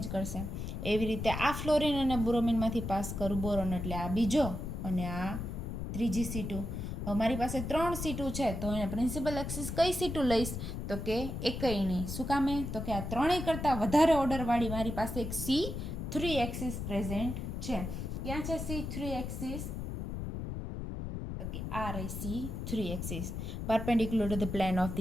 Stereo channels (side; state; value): left; noise; rumble, 5 dB below the sound